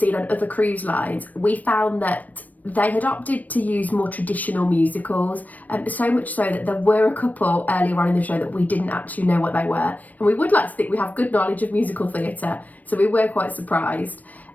on other cruise lines, we found that they had opted to use more traditional musicals, so much so that there were a couple earlier on in the show that we didn't actually know what they were. And we would like to think we have good knowledge of musical theatre, so we were quite surprised.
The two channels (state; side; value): late; right; 0.078 ms